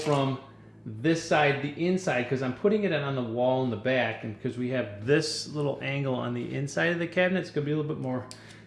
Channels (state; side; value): identical; both; correlation 1.00